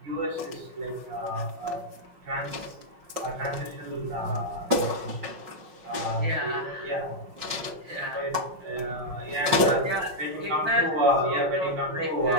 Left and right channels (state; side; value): late; left; 5.5 ms